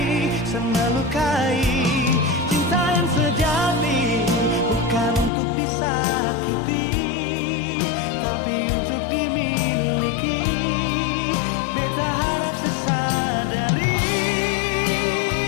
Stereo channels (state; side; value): drops out; right; at 5.3 s